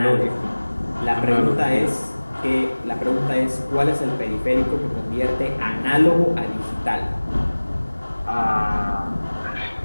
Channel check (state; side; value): inverted; both; correlation -1.00